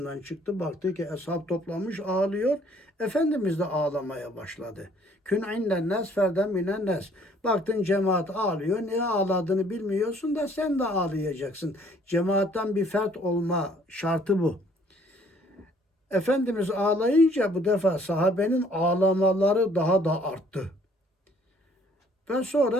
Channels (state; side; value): normal; both; correlation 0.60